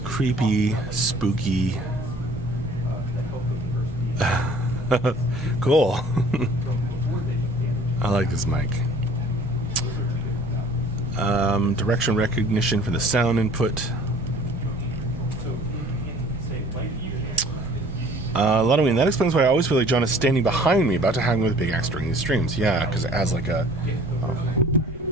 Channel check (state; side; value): normal; both; correlation 0.51